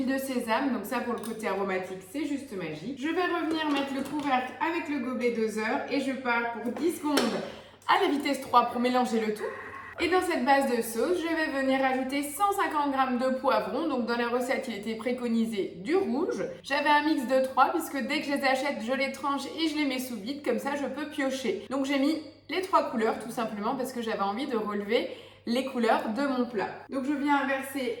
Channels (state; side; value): identical; both; correlation 1.00